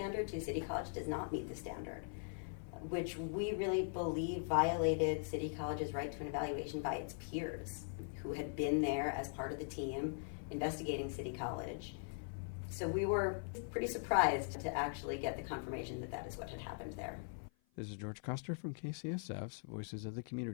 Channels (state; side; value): silent; right; 50 dB below the other